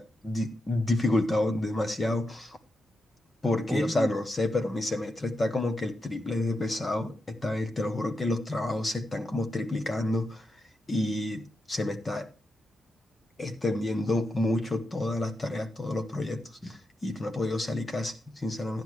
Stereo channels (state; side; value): normal; both; correlation 0.86